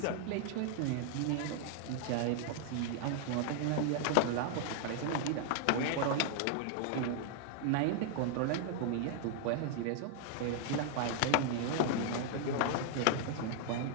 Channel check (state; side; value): different; both; correlation 0.00